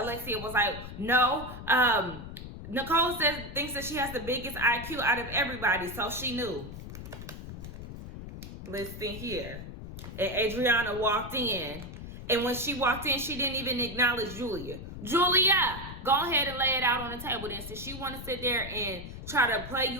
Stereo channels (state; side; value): noise; left; rumble, 11 dB below the sound